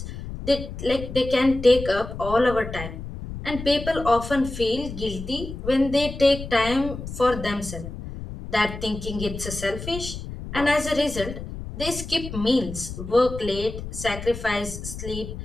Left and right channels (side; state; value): left; noise; rumble, 9 dB below the sound